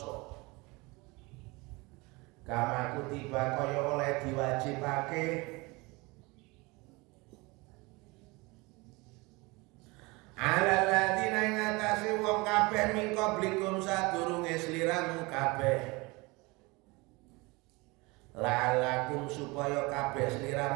Kama kutiba kaya oleh diwajibake alal ladzina ing atase wong kabeh min qablikum sadurunge sliramu kabeh. La'alakum supaya kabeh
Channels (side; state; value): left; quieter; 24.8 dB